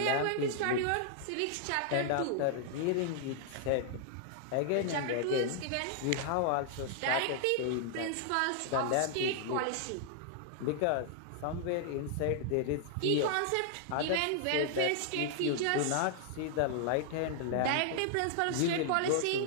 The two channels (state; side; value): different; both; correlation -0.01